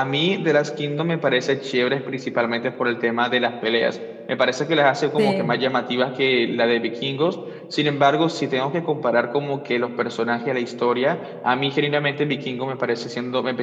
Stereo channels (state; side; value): identical; both; correlation 1.00